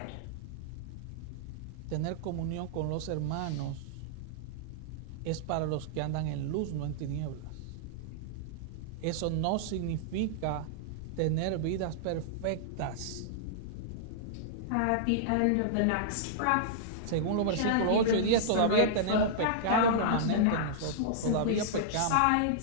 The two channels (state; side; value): different; both; correlation -0.02